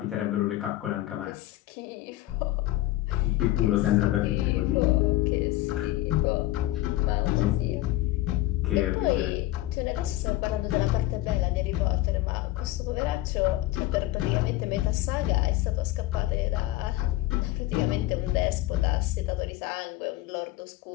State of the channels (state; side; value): quieter; right; 16.4 dB